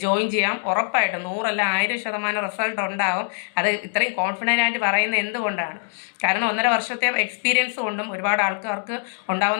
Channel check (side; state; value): right; silent; 63 dB below the other